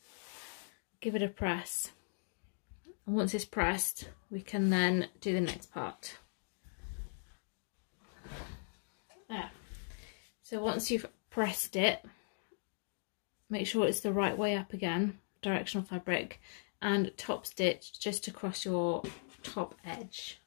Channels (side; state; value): right; silent; digital silence